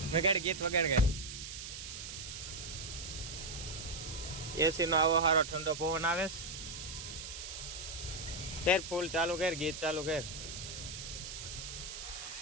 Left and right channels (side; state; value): right; noise; hiss, 8 dB below the sound